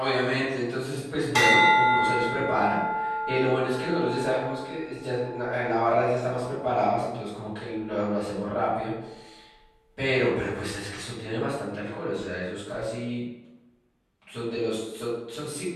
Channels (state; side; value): identical; both; correlation 1.00